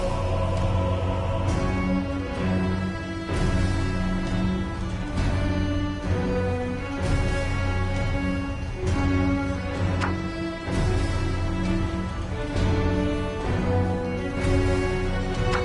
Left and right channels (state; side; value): identical; both; correlation 1.00